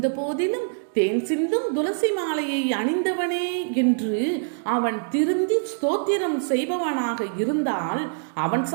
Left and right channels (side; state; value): left; silent; digital silence